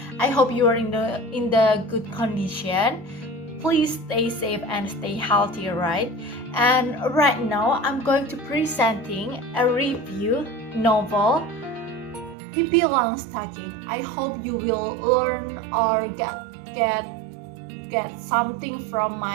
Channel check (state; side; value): drops out; left; at 12.4 s